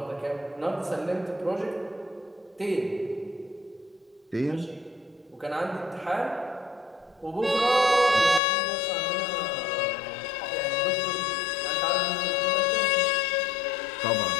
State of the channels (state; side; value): drops out; right; at 8.4 s